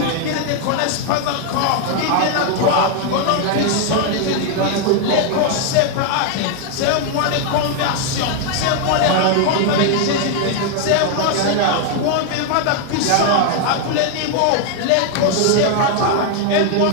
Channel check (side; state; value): both; different; correlation 0.00